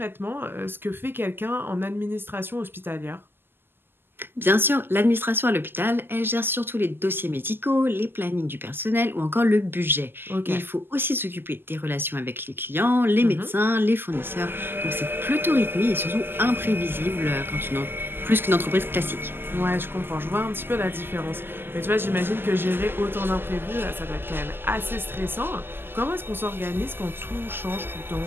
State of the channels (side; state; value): left; late; 0.10 ms